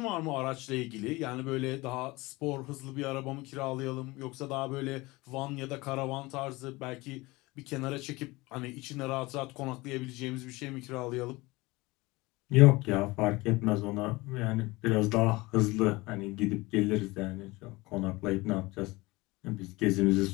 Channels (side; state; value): right; quieter; 22.1 dB